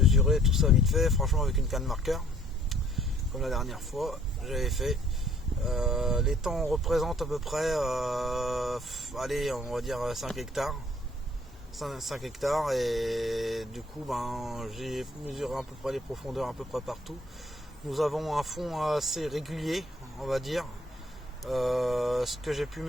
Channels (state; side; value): normal; both; correlation 0.60